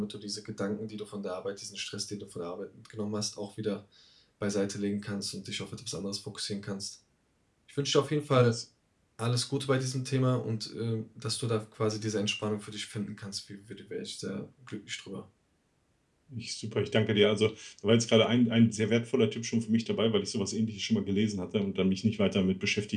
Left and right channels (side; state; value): both; identical; correlation 1.00